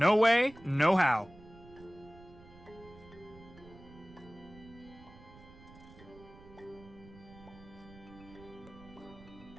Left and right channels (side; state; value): right; noise; rumble, 20 dB below the sound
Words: way, no how.